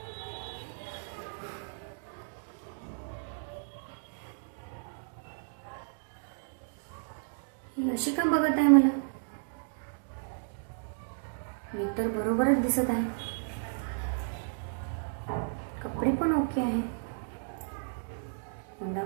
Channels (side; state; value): left; silent; digital silence